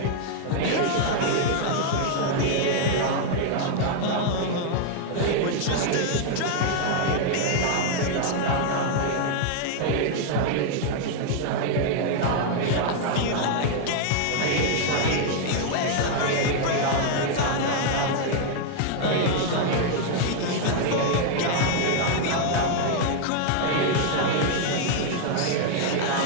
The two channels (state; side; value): different; both; correlation 0.00